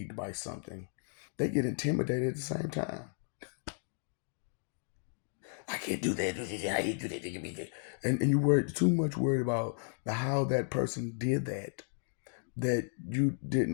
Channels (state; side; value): silent; right; 55 dB below the other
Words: by something, they get intimidated at the same time. I can't do that. I can't do that. And you were too much worried about how that person did that you